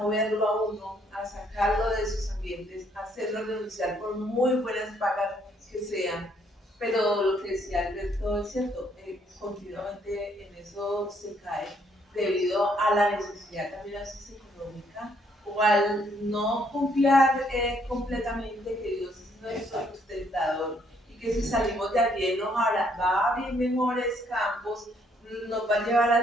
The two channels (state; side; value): normal; both; correlation 0.68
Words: a uno, a sacarlo de esos ambientes, a hacerlo renunciar por muy buenas pagas que sean. Pero lo que decía Alberto es cierto, continuamente en eso se cae debido a la necesidad también a veces económica o al no confiar completamente que Dios es nuestro sustentador y que si salimos de allí nos va a abrir mejores campos, nos va a llevar